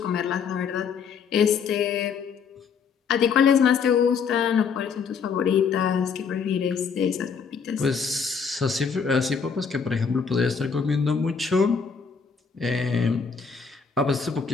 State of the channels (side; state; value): right; quieter; 6.0 dB